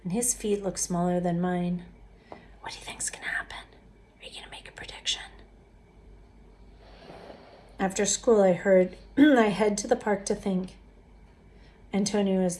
and his feet look smaller than mine. What do you think's gonna happen? Are you gonna make a prediction? After school, I head to the park to think. Antonio is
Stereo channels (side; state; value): both; identical; correlation 1.00